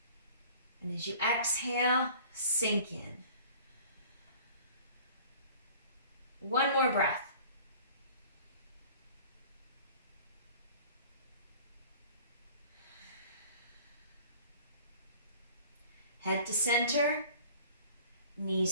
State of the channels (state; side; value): inverted; both; correlation -0.47